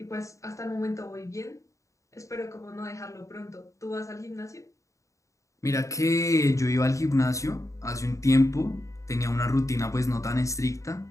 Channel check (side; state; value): right; late; 0.15 ms